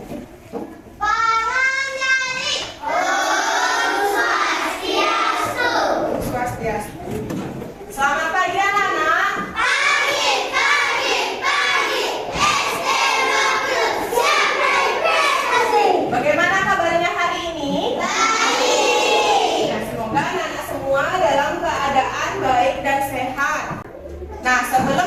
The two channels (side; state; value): both; identical; correlation 1.00